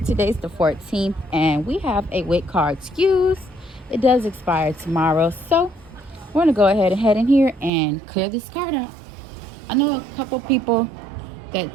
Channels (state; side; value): drops out; left; at 7.7 s